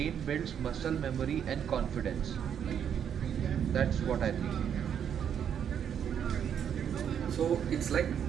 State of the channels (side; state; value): left; quieter; 8.5 dB